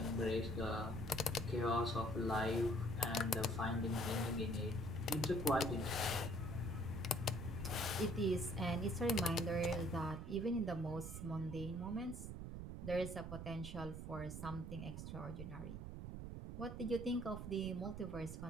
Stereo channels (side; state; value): right; noise; rumble, 7 dB below the sound